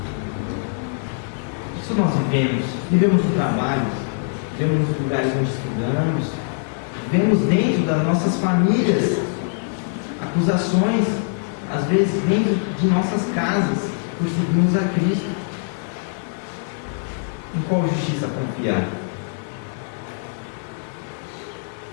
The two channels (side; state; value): right; silent; digital silence